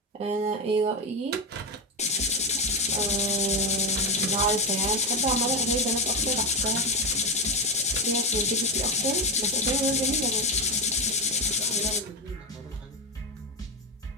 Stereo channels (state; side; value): normal; both; correlation 0.12